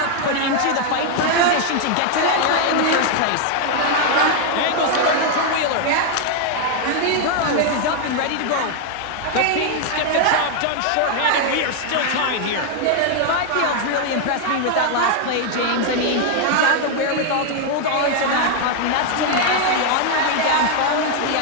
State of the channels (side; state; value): both; different; correlation 0.00